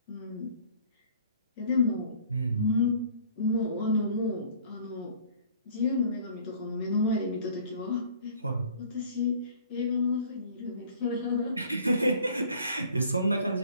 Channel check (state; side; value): inverted; both; correlation -0.52